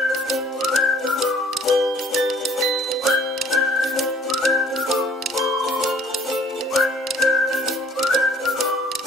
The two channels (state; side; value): normal; both; correlation 0.57